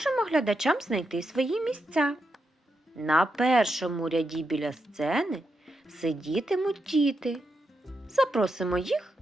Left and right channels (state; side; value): normal; both; correlation 0.84